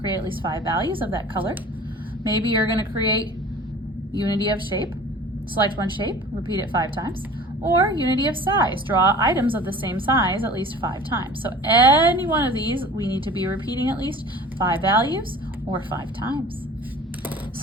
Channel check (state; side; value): normal; both; correlation 0.43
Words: at least 5 values of that color. Maybe you're going to create Unity of shape, select one shape, repeat it 5 times. Or Unity of size, draw items of the same size at least 5 times. So any one of these, we need to be repeating at least 5 values or 5 times.